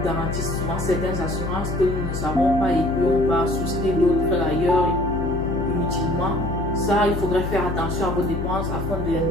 garantit souvent certaines assurances que nous ne savons pas et qu'on va souscrire d'autres ailleurs inutilement. Ça, il faudrait faire attention à vos dépenses afin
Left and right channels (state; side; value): noise; left; hum, 5 dB below the sound